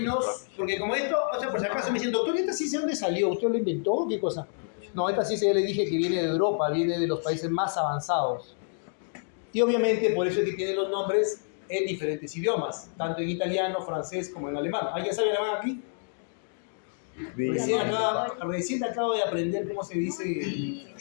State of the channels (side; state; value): right; silent; digital silence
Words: porque como esto, o sea, por si acaso me dicen, doctor, ¿esta ciencia de dónde salió? ¿Usted lo inventó? ¿Qué cosa? No, esta ciencia ya le dije que viene de Europa, viene de los países más avanzados. Y obviamente por eso es que tiene los nombres en diferentes idiomas, tanto en italiano, francés como en alemán. ¿Alguien sabe alemán aquí? Recién acabo de aprender cómo se dice